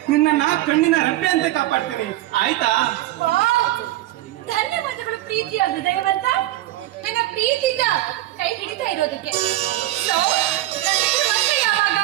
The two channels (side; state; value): left; quieter; 15.8 dB